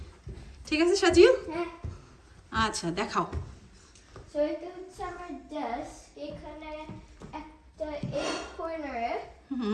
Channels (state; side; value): identical; both; correlation 1.00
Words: ঠিক আছে সাজিল? আচ্ছা দেখাও। সো এটা হচ্ছে আমার ডেস্ক। এখানে একটা এই কর্নারে